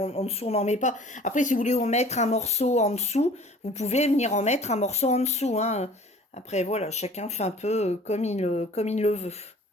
dessous, on n'en met pas. Après, si vous voulez en mettre un morceau en dessous, vous pouvez venir en mettre un morceau en dessous. Hein. Après, voilà, chacun fait un peu comme il le veut.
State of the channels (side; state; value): both; normal; correlation 0.48